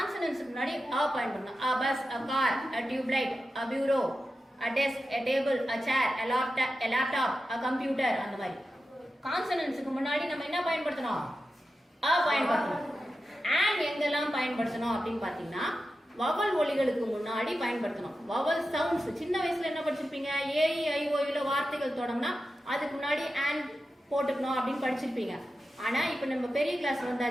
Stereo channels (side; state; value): both; normal; correlation 0.91